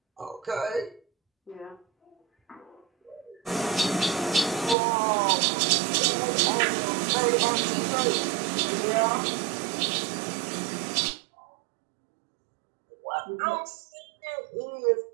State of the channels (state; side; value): drops out; left; at 4.8 s